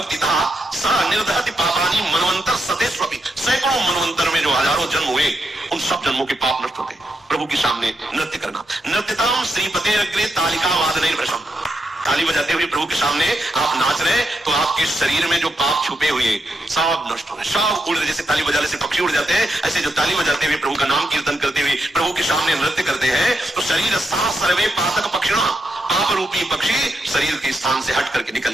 सा निर्दहति पापानि मनवंतर सतेष्वपि। सैकड़ों मनवंतर में जो हजारों जन्म हुए, उन सब जन्मों के पाप नष्ट होते हैं। प्रभु के सामने नृत्य करना। नृत्यताम श्रीपतेरग्रे तालिका वादनैर भृशम। ताली बजाते हुए प्रभु के सामने आप नाच रहे, तो आपके शरीर में जो पाप छुपे हुए सब नष्ट हो रहे, सब उड़ रहे। जैसे ताली बजाने से पक्षी उड़ जाते हैं, ऐसे जो ताली बजाते हुए प्रभु का नाम कीर्तन करते हुए प्रभु के सामने नृत्य करते हैं, तो शरीर सा सर्वे पातक पक्षिणा, पाप रूपी पक्षी शरीर के स्थान से हट करके निकल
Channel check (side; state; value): both; normal; correlation 0.82